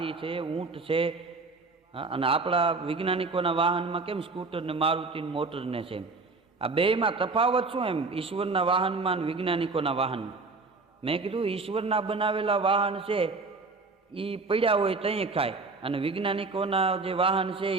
છે, ઊંટ છે. હા, અને આપણા વૈજ્ઞાનિકોના વાહનમાં કેમ સ્કૂટર ને મારુતિ મોટર ને છે. આ બેમાં તફાવત શું એમ ઈશ્વરના વાહનમાં અને વૈજ્ઞાનિકોના વાહનમાં? મેં કીધું ઈશ્વરના બનાવેલા વાહન છે એ પડ્યા હોય ત્યાં ખાય, અને વૈજ્ઞાનિકોના જે વાહન છે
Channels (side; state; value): left; quieter; 3.9 dB